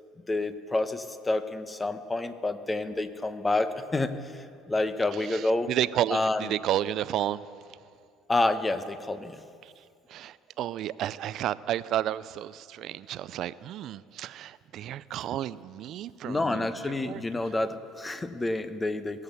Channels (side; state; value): both; normal; correlation 0.76